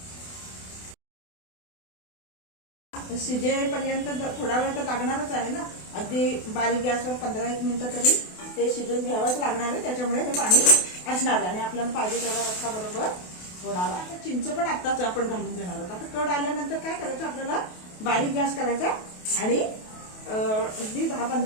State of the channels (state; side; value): late; right; 28 ms